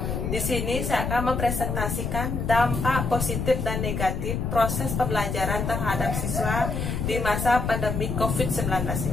Di sini saya akan mempresentasikan dampak positif dan negatif proses pembelajaran terhadap siswa di masa pandemi COVID-19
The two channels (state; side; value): noise; left; rumble, 2 dB below the sound